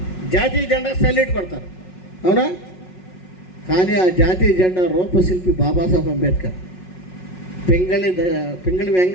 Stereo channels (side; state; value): right; late; 5.4 ms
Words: జాతీయ జెండా సల్యూట్ కొడతారు, అవునా? కానీ ఆ జాతీయ జెండా రూపశిల్పి బాబాసాహెబ్ అంబేద్కర్. పింగళి